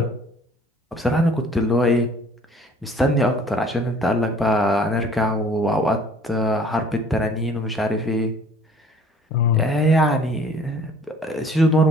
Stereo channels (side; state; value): both; normal; correlation 0.53